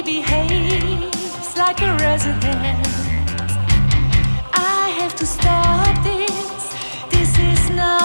behaves like a resident. I have to stop this. This is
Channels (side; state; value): both; inverted; correlation -1.00